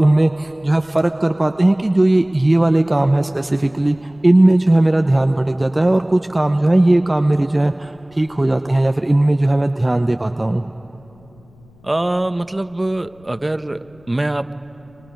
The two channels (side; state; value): left; noise; rumble, 29 dB below the sound